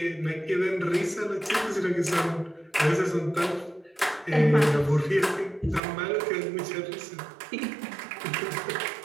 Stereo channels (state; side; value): drops out; left; at 5.8 s